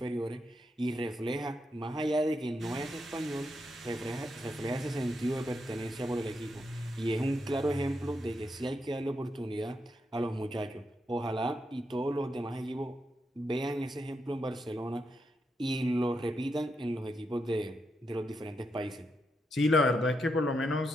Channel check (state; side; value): normal; both; correlation 0.83